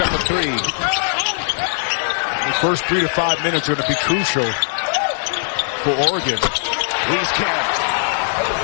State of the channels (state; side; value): silent; right; digital silence